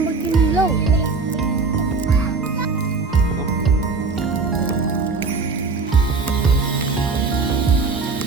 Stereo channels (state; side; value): quieter; left; 4.3 dB